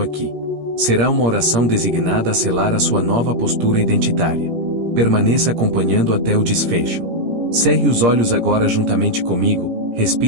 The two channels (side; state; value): left; late; 17 ms